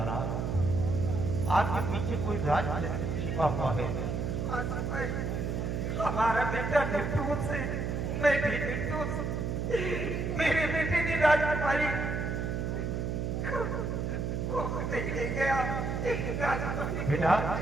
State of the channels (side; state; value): right; noise; hum, 1 dB below the sound